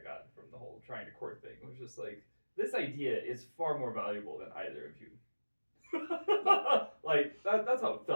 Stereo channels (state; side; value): inverted; both; correlation -1.00